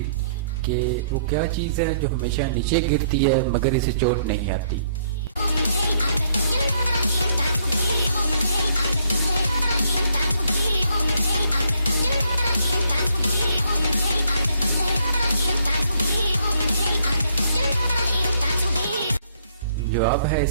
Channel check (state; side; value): inverted; both; correlation -0.68